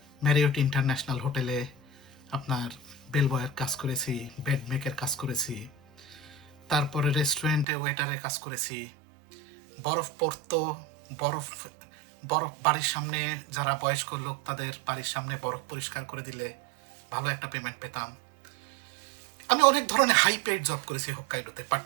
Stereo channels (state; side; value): drops out; left; at 7.7 s